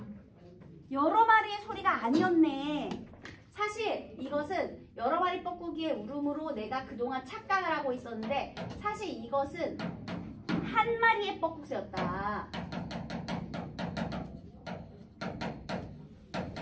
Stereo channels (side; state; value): both; identical; correlation 1.00